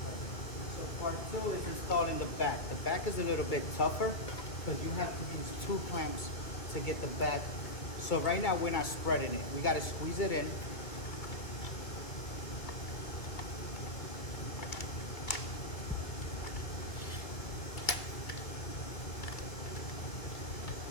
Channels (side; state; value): right; late; 1.9 ms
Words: So part two is installing the back. The back is a little bit tougher because you have to use two clamps to get the back. So right now we're not spreading it. We got to squeeze it in.